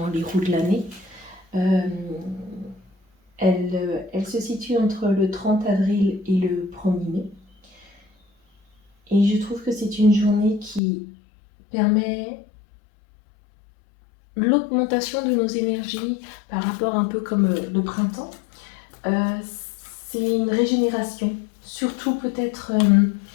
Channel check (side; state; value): right; drops out; at 10.8 s